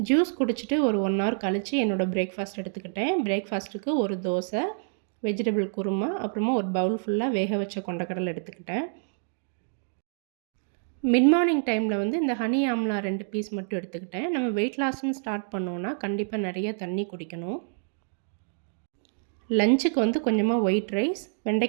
ஜூஸ் குடிச்சிட்டு ஒரு 1 ஹவர் கழித்து என்னோடய பிரேக்ஃபாஸ்ட் எடுத்துக்கிட்டேன். பிரேக்ஃபாஸ்ட்டுக்கு ஒரு தோசை, வெஜிடபிள் குருமா, அப்புறமா ஒரு பவுல் ஃபுல்லாக வேக வச்ச கொண்டக்கடலை எடுத்துக்கிட்டேன். மிட் மார்னிங் டைமில் இந்த ஹனி ஆம்லா 2 பீஸ் மட்டும் எடுத்துக்கிட்டேன். நம்ம வெயிட் லாஸ்ன்னு ஸ்டார்ட் பண்ணோன்னா கண்டிப்பாக நிறைய தண்ணி குடிக்கணும். லஞ்சுக்கு கொஞ்சமாக ஒயிட் ரைஸ்,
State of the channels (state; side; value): silent; left; 57 dB below the other